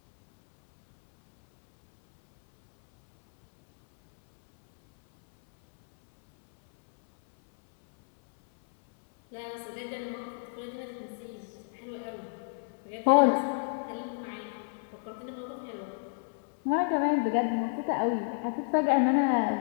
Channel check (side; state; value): right; silent; 58 dB below the other